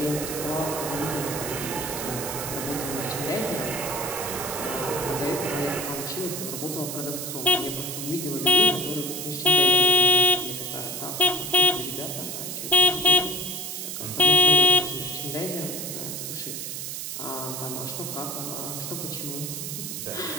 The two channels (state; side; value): noise; right; hiss, 6 dB below the sound